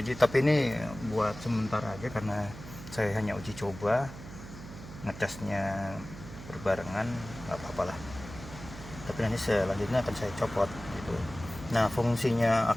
tapi ini buat sementara aja karena saya hanya uji coba, ngecasnya berbarengan, nggak apa-apa lah. Tapi nanti selanjutnya akan saya copot gitu. Nah, fungsinya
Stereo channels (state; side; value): noise; right; hum, 13 dB below the sound